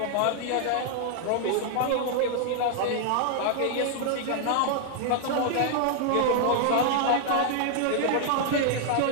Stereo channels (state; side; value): different; both; correlation 0.00